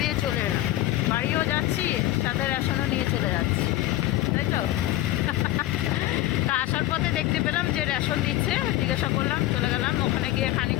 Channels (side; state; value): right; quieter; 15.5 dB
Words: দিয়ে চলে এলাম, বাড়িও যাচ্ছি সাথে রেশনও নিয়ে চলে যাচ্ছি, তাই তো। তা আসার পথে দেখতে পেলাম যে রেশন দিচ্ছে, জিজ্ঞাসা করলাম, চলে গেলাম, ওখানে গিয়ে